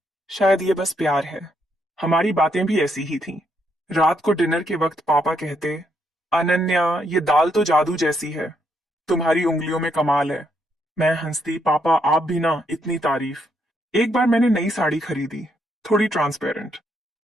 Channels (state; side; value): normal; both; correlation 0.76